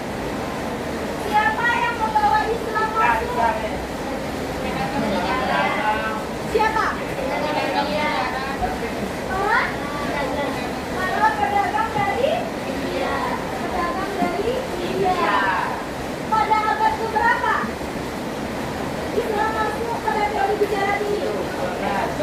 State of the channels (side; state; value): both; identical; correlation 1.00